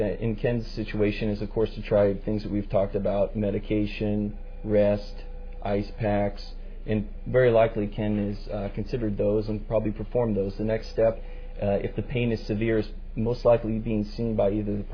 Ken's situation is, of course, to try things that we've talked about: medication, rest, ice packs, and very likely Ken has considered those and probably performed those. The next step, if the pain is severe, is most likely being seen by either the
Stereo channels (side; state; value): both; identical; correlation 1.00